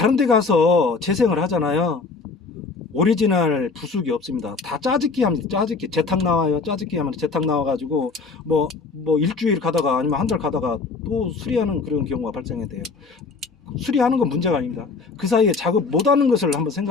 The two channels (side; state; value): right; quieter; 4.4 dB